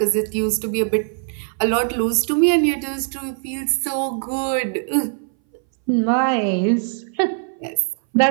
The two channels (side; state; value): left; silent; 61 dB below the other